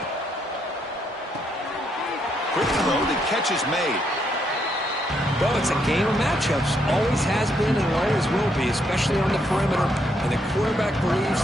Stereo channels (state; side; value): normal; both; correlation 0.75